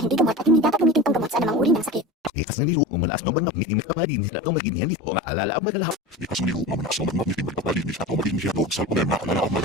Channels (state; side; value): normal; both; correlation 0.31